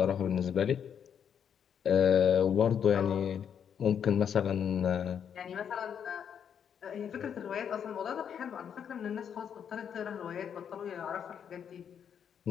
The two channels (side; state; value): right; quieter; 8.1 dB